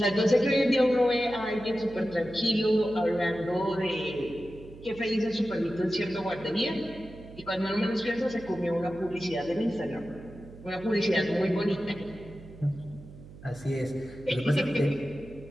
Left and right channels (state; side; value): noise; right; hum, 18 dB below the sound